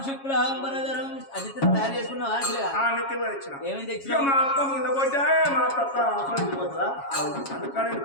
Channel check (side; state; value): right; late; 7.3 ms